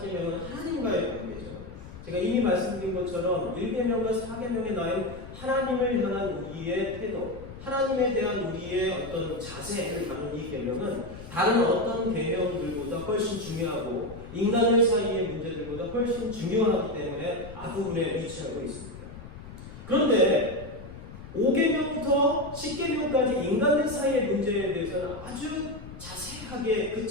하나님과의 관계죠. 제가 이미 말씀드린 것처럼 1계명과 4계명에 나온 하나님을 향한 우리의 태도, 하나님에 대한 우리의 어떤 자세를 다룬 이 계명은 다른 어떤 계명들보다 훨씬 중요하고 인간들 사이의 문제들보다 훨씬 중요하기 때문에 앞부분에 위치하고 있습니다. 그런데 5계명부터 10계명까지 인간들 사이의 문제에 대해서는 아주 자세하게 그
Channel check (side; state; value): left; noise; rumble, 14 dB below the sound